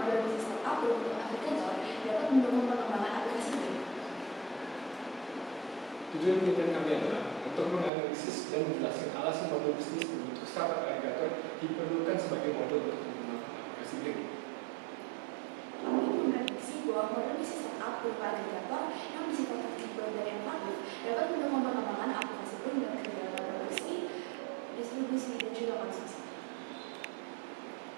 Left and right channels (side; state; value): left; drops out; at 7.9 s